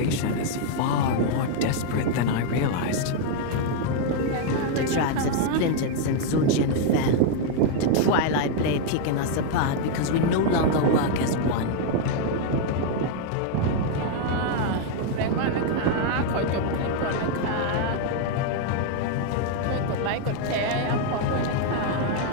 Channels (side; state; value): both; different; correlation 0.00